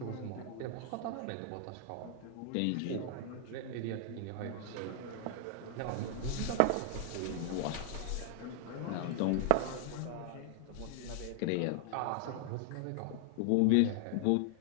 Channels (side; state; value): both; different; correlation 0.00